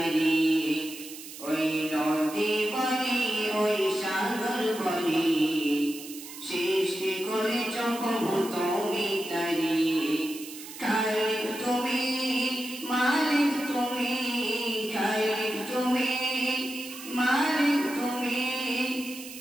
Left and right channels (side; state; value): right; noise; hiss, 13 dB below the sound